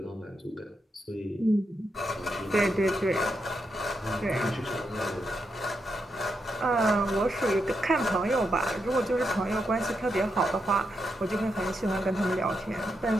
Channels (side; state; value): both; normal; correlation 0.83